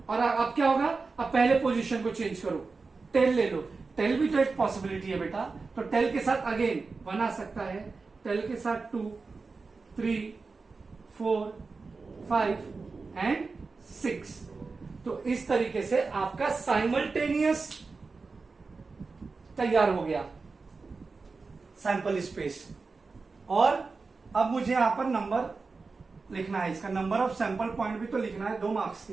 और अब क्या होगा, अब पहले पोजीशन को चेंज करो, टेल ले लो, टेल भी तो एक पॉसिबिलिटी है बेटा। तो टेल के साथ अगेन 1 आ सकता है, टेल के साथ 2 3 4 5 एंड 6। तो इस तरीके से आपका साइमल्टेनियस तैयार हो गया सैंपल स्पेस। और अब मुझे यहां पर नंबर लिखना है, इसका नंबर ऑफ सैंपल पॉइंट भी तो लिखना है, 2 मार्क्स के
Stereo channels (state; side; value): quieter; left; 4.2 dB